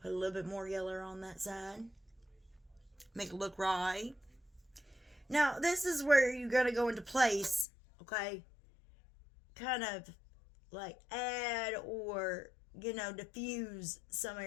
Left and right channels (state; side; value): drops out; right; at 7.7 s